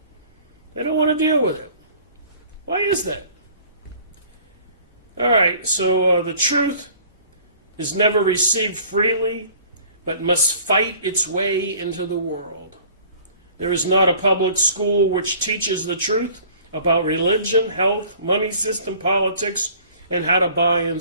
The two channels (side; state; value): both; inverted; correlation -0.50